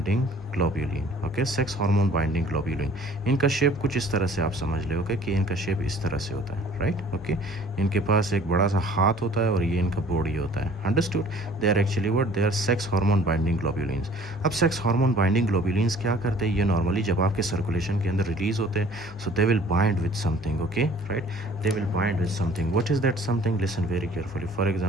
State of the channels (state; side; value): normal; both; correlation 0.52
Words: globulin. Okay, sex hormone binding globulin, इनका शेप कुछ इस तरह से आप समझ ले। ओके, कि इनका शेप इस तरह से होता है, राइट। ओके, इनके पास एक बड़ा सा हाथ होता है और ये इनका बॉडी होता है। Understood? They are actually what, they are sex hormone binding globulins. अब सेक्स हार्मोन बाइंडिंग ग्लोब्यूलिन्स क्या करते हैं? ये नॉर्मली जब आपके सर्कुलेशन के अंदर रिलीज होते हैं, so they will bind with something. Okay, right, they will bind with something. What is that something? Listen very carefully. For